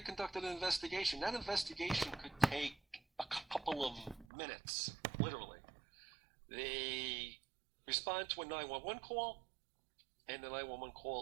conduct an investigation. That investigation could take a couple of minutes, literally. They respond to a 911 call, and the 911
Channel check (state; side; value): drops out; left; at 4.2 s